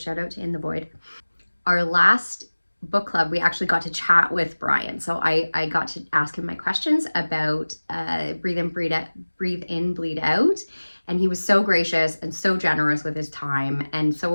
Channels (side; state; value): both; inverted; correlation -1.00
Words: out to In the Void. Our last book club, we actually got to chat with Brian. So I got to ask him my questions about Breathe In, Bleed Out. And he was so gracious and so generous with his time. And